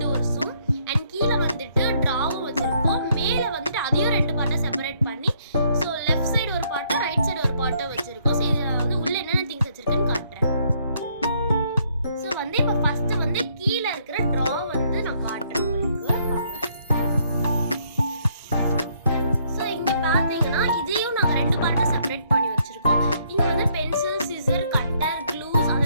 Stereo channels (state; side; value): inverted; both; correlation -0.69